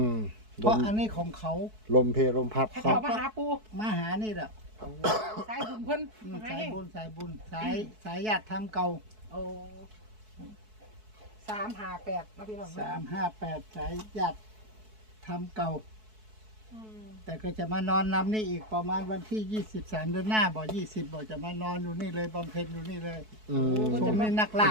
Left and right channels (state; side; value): late; left; 4.6 ms